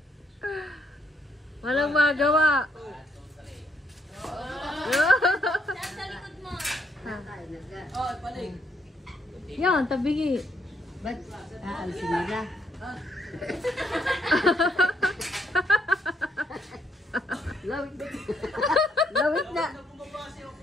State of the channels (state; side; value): normal; both; correlation 0.73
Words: Walang magawa. Yan, tabigi. Ba't aalisin nila? Lawit na.